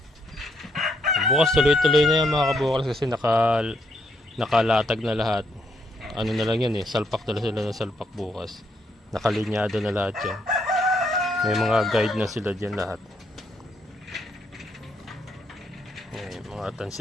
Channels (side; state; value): both; normal; correlation 0.74